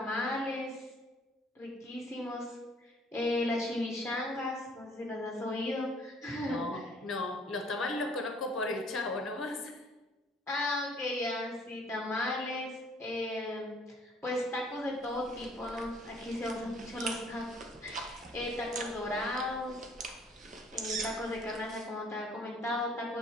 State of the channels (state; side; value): normal; both; correlation 0.58